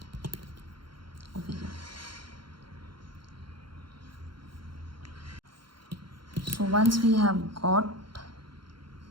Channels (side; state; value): left; late; 0.73 ms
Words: over here. So once we have got